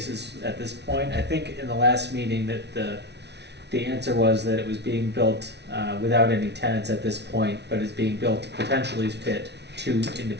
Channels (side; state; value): left; late; 0.50 ms